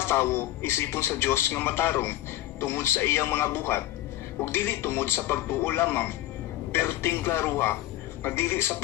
tawo isipon sa Dios nga matarong tungod sa iyang mga buhat ug dili tungod sa pagtuo lamang. Pero tingklaruha nga dili sa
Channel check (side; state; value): right; quieter; 15.0 dB